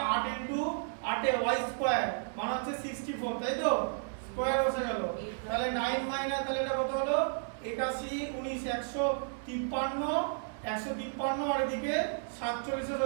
8 ইনটু 8 এ y স্কয়ার মানে হচ্ছে 64, তাই তো, স্কয়ার বসে গেল। তাহলে 9 মাইনাস, তাহলে এটা কত হলো? 81 19 153 আর এদিকে 47 এর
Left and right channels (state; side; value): silent; left; 56 dB below the other